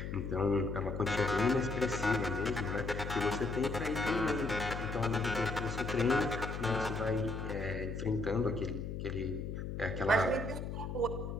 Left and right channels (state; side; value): noise; left; hum, 5 dB below the sound